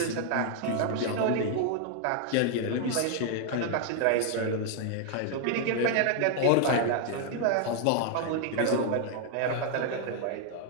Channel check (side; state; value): both; different; correlation 0.00